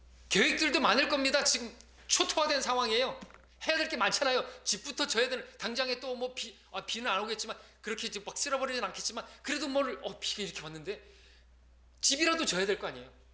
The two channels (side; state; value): both; identical; correlation 1.00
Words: 계획들도 많을 겁니다. 지금 초토화된 상황이에요. 해야 될 게 많잖아요. 집부터 져야 되는, 당장에 또 뭐 비는 안 오겠지만, 그렇게 막 쓸어버리진 않겠지만, 그래도 비가 이렇게 왔는데, 집이라도 져야 될 거 아니에요.